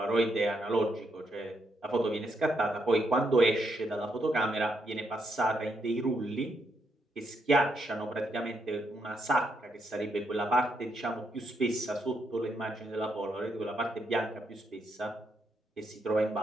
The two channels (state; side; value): normal; both; correlation 0.78